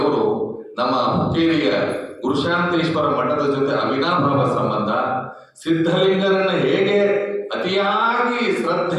ನಮ್ಮ ಹುಕ್ಕೇರಿಯ ಗುರುಶಾಂತೇಶ್ವರ ಮಠದ ಜೊತೆ ಅವಿನಾಭಾವ ಸಂಬಂಧ, ಸಿದ್ಧಲಿಂಗರನ್ನ ಹೇಗೆ ಅತಿಯಾಗಿ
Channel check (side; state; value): both; identical; correlation 1.00